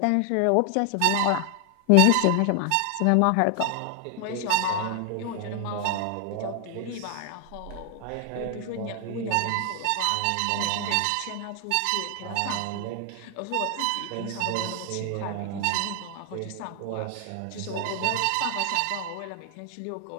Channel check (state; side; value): different; both; correlation 0.00